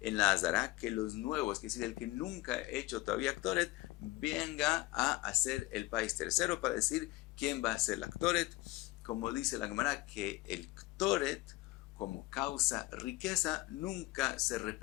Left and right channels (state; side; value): quieter; right; 19.3 dB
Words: en la Azara que los nuevos, que es decir, el que nunca ha hecho todavía Ktoret, venga a hacer el país tercero para decir quién va a hacer la Ktoret. Como dice la Gemara, que el Ktoret, como causa riqueza, nunca se